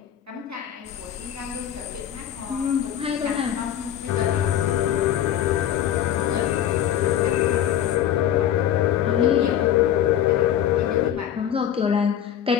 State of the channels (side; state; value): right; quieter; 10.4 dB